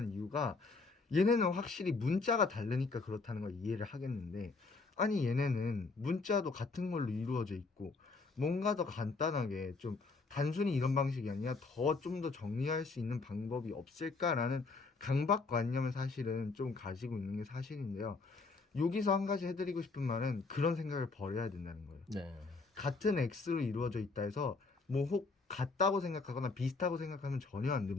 이유가, 얘네는 확실히 문자가 다르니까 그렇다는 걸 이해를 하겠는데, 아니 얘네는 문자도 같은 걸로 이루어져 있고 뭔가 더 간단하게 좀 단순히 이런 방식이 아니라 좀 더 정리할 수 있는 방법이 없을까라는 강박관념을 사실은 좀 가지고 있는 게 사실인데요. 여기서 한 가지 해드리고 싶은 말은 그런 생각을 버려야 된다는 거예요. 네. 같은 x로 이루어져 있다 해서 뭐 혹 같다고 생각하거나 비슷하고 생각하면 전혀 안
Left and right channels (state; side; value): quieter; right; 4.0 dB